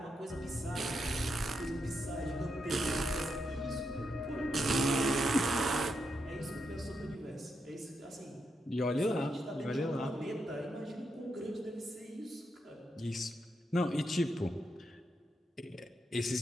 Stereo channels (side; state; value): both; normal; correlation 0.83